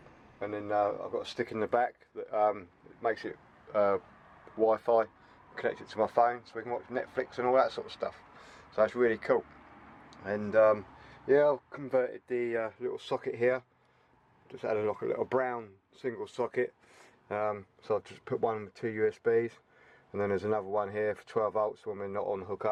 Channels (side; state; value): both; identical; correlation 1.00